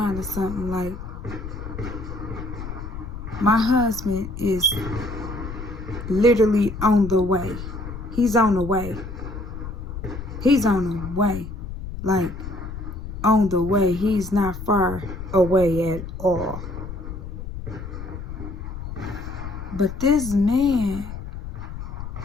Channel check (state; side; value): noise; left; rumble, 9 dB below the sound